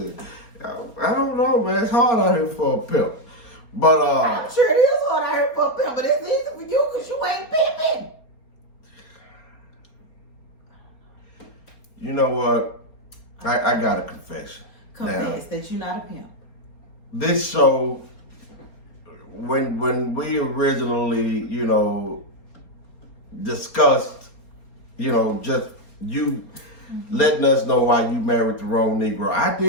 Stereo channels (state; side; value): late; right; 4.3 ms